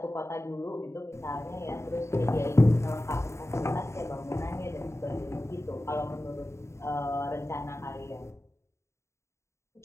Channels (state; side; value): late; right; 0.13 ms